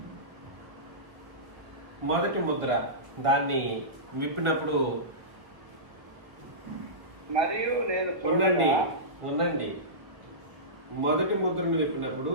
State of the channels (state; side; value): late; left; 1.0 ms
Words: మొదటి ముద్ర దాన్ని విప్పినప్పుడు మరియు నేను ఉండండి. మొదటి ముద్రను విప్పినప్పుడు